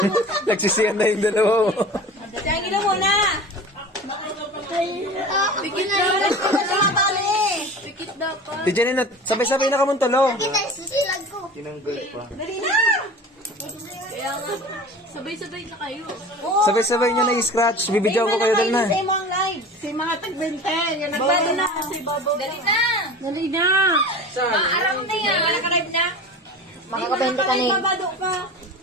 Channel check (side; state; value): both; normal; correlation 0.36